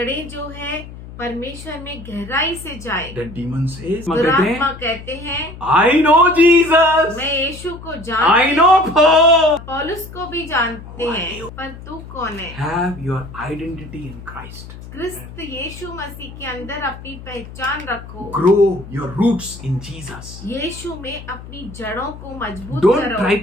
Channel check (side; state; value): left; noise; hum, 14 dB below the sound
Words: जो है परमेश्वर में गहराई से जाए. The demon says, दुरात्मा कहते हैं I know Jesus. मैं यीशु को I जानती know Paul. पौलुस को भी जानते हैं, पर तू कौन है? Have your identity in Christ. क्रिस्त यीशु मसीह के अंदर अपनी पहचान रखो. Grow your roots in Jesus. यीशु में अपनी जड़ों को मजबूत Don't करो. try